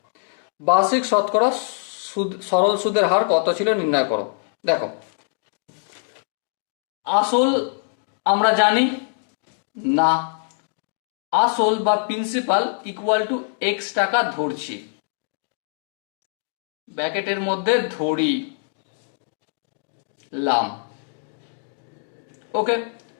বার্ষিক শতকরা সরল সুদের হার কত ছিল নির্ণয় করো। দেখো আসল আমরা জানি না, আসল বা প্রিন্সিপাল ইকুয়াল টু এক্স টাকা ধরছি, ব্র্যাকেটের মধ্যে ধরি লাম। ওকে,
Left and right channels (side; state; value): right; silent; 63 dB below the other